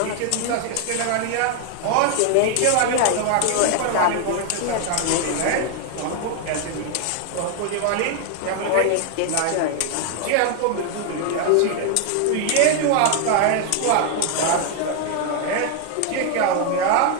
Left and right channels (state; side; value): different; both; correlation 0.00